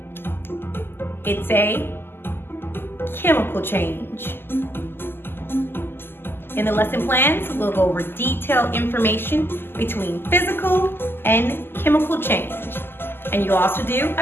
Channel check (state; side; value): late; right; 0.11 ms